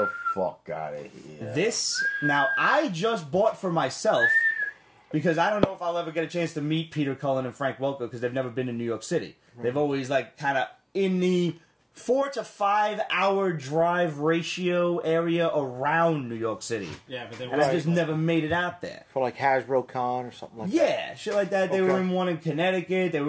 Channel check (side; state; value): both; identical; correlation 1.00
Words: fuck out of here. This, now, I just bought for myself because I don't know if I'll ever get a chance to meet Peter Cullen and Frank Welker because they've never been in New York City. They've always, kind of in the 4 to 5 hour drive ratio area around New York City. Yeah, but they And I just never made it out there. For like Hasbro Con or something like that. Yeah, shit like that. They were in one in Connecticut. They